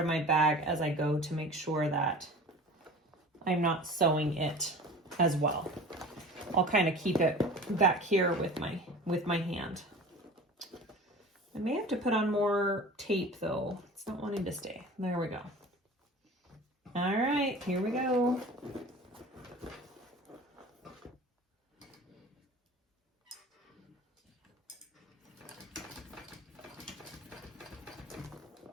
my bag as I go to make sure that I'm not sewing it as well. I'll kind of keep it back here with my hand. I may have to put on more tape though. It's not wanting to stay. There we go. All right, here we go.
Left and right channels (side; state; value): both; normal; correlation 0.39